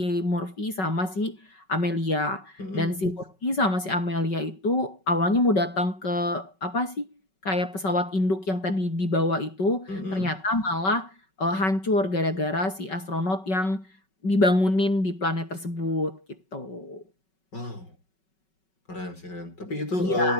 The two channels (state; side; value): late; right; 5.3 ms